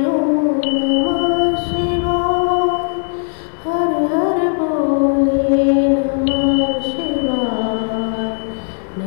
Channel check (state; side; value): silent; right; 57 dB below the other